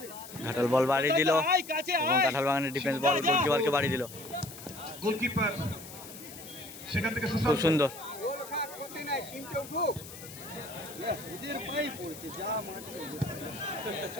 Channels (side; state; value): left; noise; hiss, 15 dB below the sound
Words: ঘাটাল বল বাড়ি দিল এবং কাঁঠাল বাগানের ডিফেন্স বল গোলকিপারকে বাড়ি দিল। গোলকিপার সেখান থেকে খুব সুন্দর। গোল খা ক্ষতি নাই, টিমটা উঠুক। ওদের পাই পড়ছে, যা মারছে।